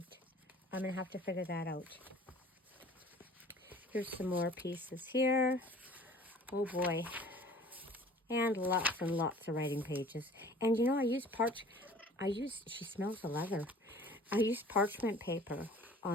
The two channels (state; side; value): normal; both; correlation 0.48